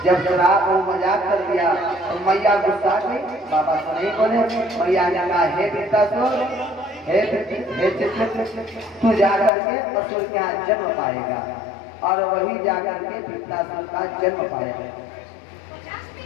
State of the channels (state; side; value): drops out; right; at 9.5 s